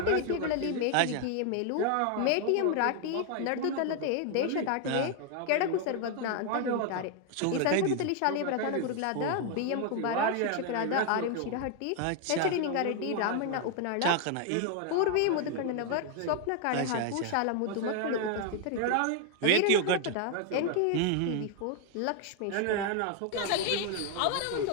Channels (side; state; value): both; different; correlation 0.00